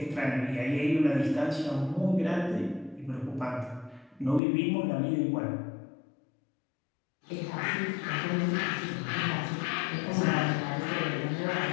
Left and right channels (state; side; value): drops out; right; at 4.4 s